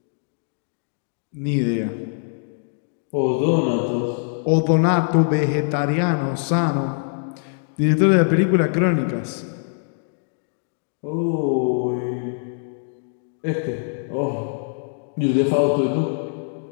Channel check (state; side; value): silent; right; 64 dB below the other